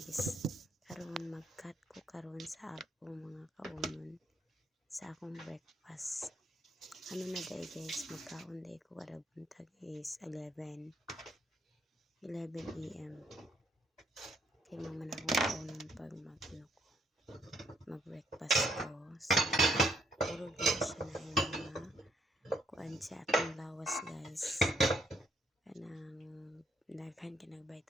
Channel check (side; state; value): both; normal; correlation 0.70